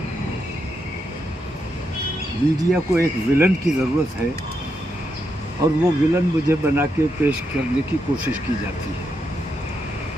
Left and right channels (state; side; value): normal; both; correlation 0.82